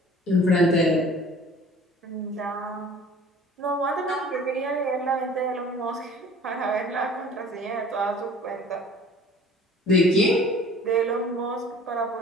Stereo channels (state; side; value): normal; both; correlation 0.47